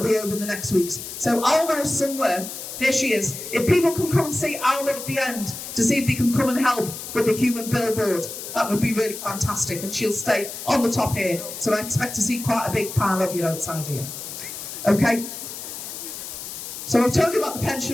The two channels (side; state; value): left; noise; hiss, 9 dB below the sound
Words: be over in the next weeks. So Alma is somewhere Here she is. If people can come and see Alma at the end to see if they can come and help with the human billboard, that would be really fantastic. And she'll stay on the top here. So I expect to see quite a big pile of you outside here. Okay? So I've told you about the